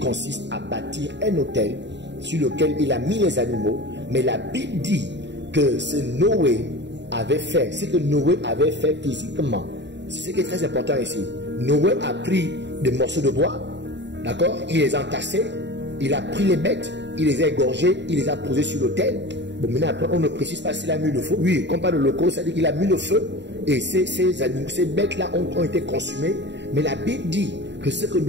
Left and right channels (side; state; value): left; late; 0.52 ms